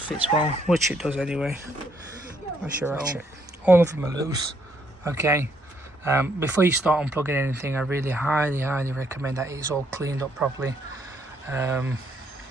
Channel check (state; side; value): normal; both; correlation 0.71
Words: well, which it does anyway. That's your ratchet. All of them are loose, okay? Before you start unplugging anything, I really highly recommend that it's all cleaned up properly, and